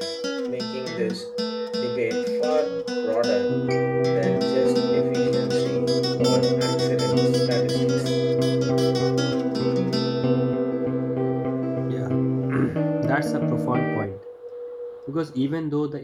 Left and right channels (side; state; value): both; identical; correlation 1.00